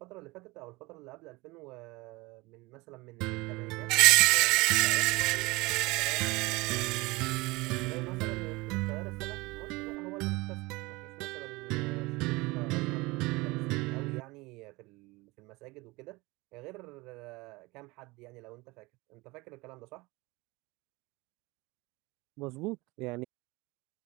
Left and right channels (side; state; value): left; quieter; 23.1 dB